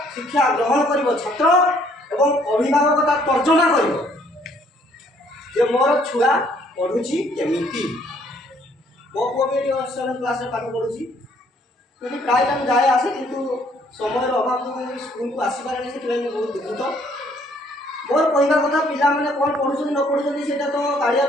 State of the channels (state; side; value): normal; both; correlation 0.64